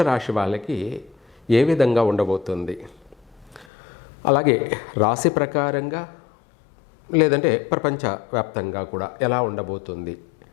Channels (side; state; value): right; drops out; at 3.7 s